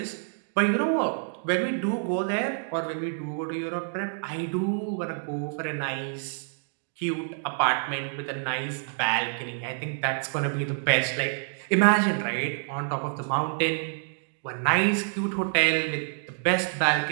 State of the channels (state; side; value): silent; left; digital silence